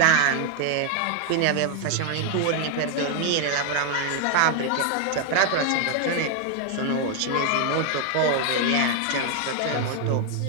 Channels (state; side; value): different; both; correlation 0.01